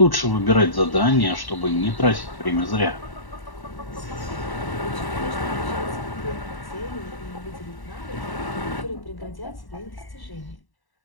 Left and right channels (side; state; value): right; late; 1.1 ms